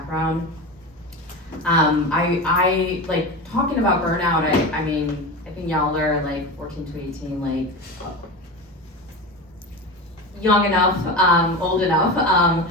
I like talking about burnout. I mean, I think y'all are like 14 to 18, like young enough, old enough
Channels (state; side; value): normal; both; correlation 0.25